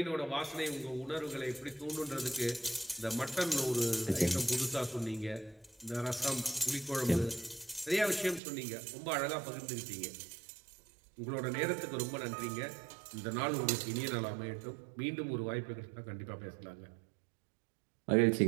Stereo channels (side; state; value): left; drops out; at 8.4 s